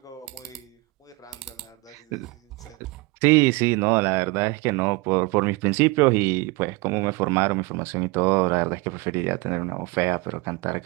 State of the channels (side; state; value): left; quieter; 24.6 dB